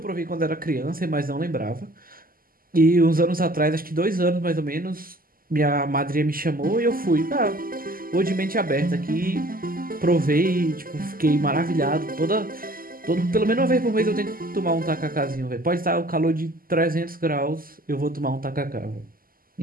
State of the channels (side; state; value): left; late; 0.42 ms